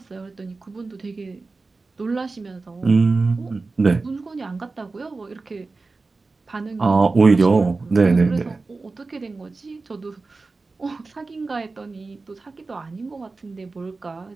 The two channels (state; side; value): quieter; left; 3.8 dB